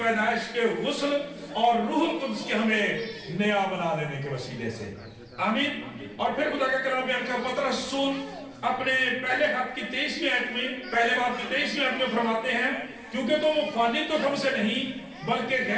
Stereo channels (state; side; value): identical; both; correlation 1.00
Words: کے غسل اور روح القدس کے ہمیں نیا بنا دینے کے وسیلے سے، آمین۔ اور پھر خدا کا کلام بیان کر پترس رسول اپنے پہلے خط کی 23ویں آیت میں، پہلے باب کی 23ویں آیت میں فرماتے ہیں، کیونکہ تم فانی تو ہم سے نہیں بلکہ